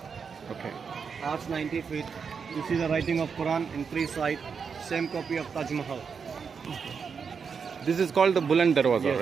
Okay. Arch 90 feet. You see the writing of Quran in three sides. Same copy of Taj Mahal. This is called the Buland Darwaza, Yes,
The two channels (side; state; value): left; quieter; 6.0 dB